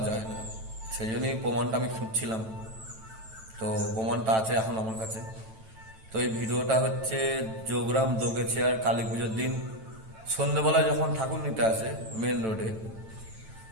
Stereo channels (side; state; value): left; late; 9.0 ms